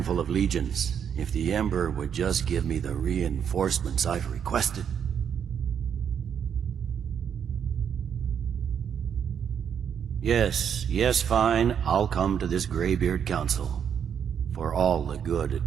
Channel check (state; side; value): quieter; left; 8.0 dB